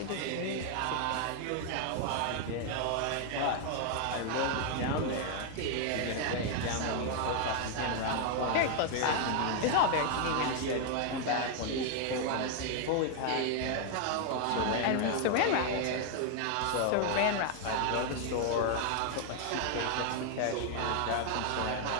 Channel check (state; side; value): different; both; correlation 0.00